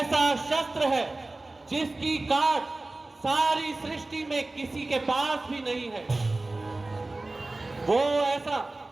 शस्त्र है जिसकी काट सारी सृष्टि में किसी के पास भी नहीं है। वो ऐसा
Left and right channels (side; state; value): left; quieter; 3.0 dB